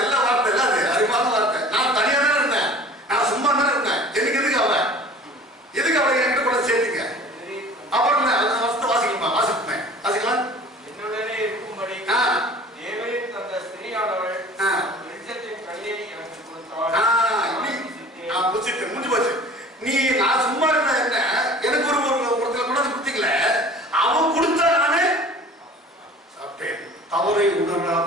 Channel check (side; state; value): both; normal; correlation 0.45